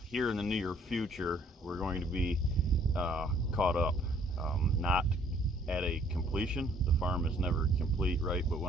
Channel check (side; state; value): both; normal; correlation 0.61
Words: here in the near future we're going to be caught up, not at a completion. The farm is never complete, right? But